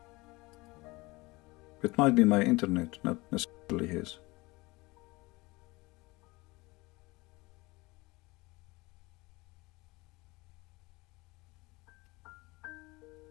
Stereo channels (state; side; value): quieter; right; 23.0 dB